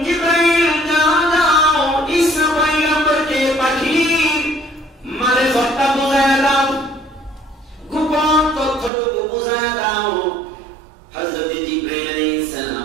জিবরাইল যাও যাও ঈসা পয়গম্বরকে পাখির মারিফতটা বুঝায়া দাও, গোপন তথ্যটুকু বুঝায়া দাও। হযরত জিবরাইল আলাইহিস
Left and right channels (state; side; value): drops out; left; at 8.9 s